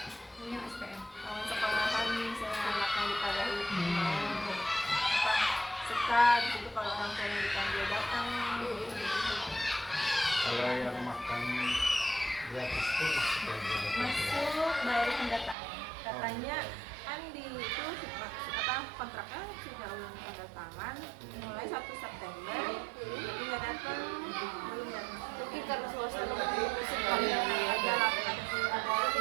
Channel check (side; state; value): left; drops out; at 15.6 s